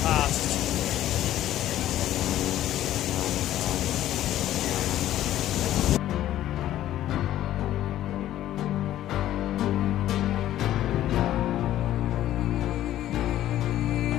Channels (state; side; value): quieter; right; 13.0 dB